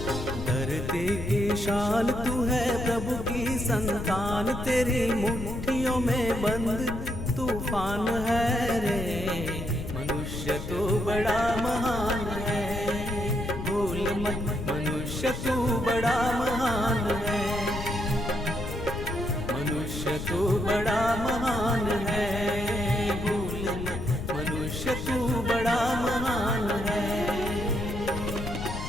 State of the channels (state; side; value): noise; left; rumble, 6 dB below the sound